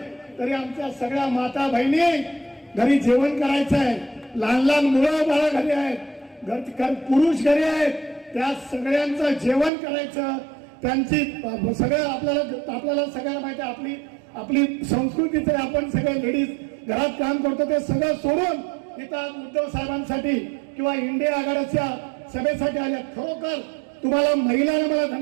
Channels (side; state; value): left; drops out; at 9.7 s